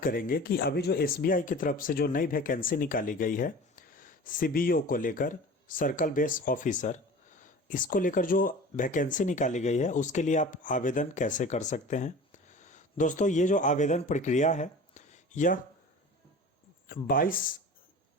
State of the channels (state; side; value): normal; both; correlation 0.38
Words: कि अभी जो एसबीआई की तरफ से जो नई वैकेंसी निकाली गई है सीबीओ को लेकर, सर्कल बेस ऑफिसर, इसको लेकर जो वैकेंसी निकाली गई है उसके लिए आप आवेदन कैसे कर सकते हैं। दोस्तों, ये जो आवेदन प्रक्रिया है यह